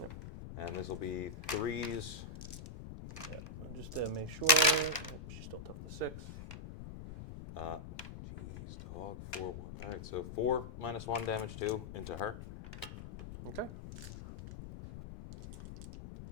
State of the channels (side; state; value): left; noise; rumble, 10 dB below the sound